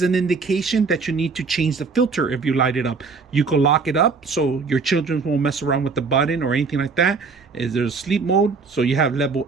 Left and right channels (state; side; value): quieter; left; 4.7 dB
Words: an indication that you need to change the filter. If you light it up, you could lock it up so your children won't mess around with the button or anything like that. Is there a sleep mode? So you have level